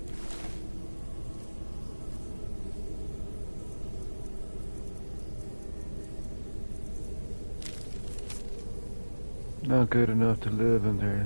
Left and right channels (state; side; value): inverted; both; correlation -1.00